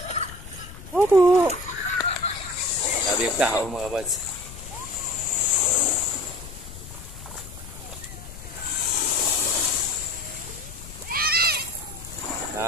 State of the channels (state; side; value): noise; left; rumble, 14 dB below the sound